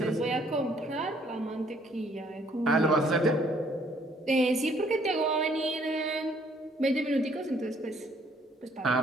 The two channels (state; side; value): normal; both; correlation 0.64